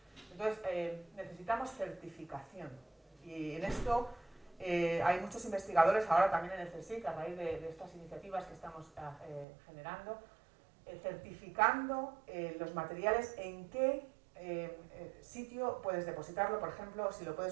Entonces, necesitamos certificación. Y en esto hay muchos investigadores, ahora también en el CSIC, a raíz de estas iniciativas que estamos generando, certificando los materiales, en qué sitio puedes depositarlo, por ejemplo, si lo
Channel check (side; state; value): left; drops out; at 9.5 s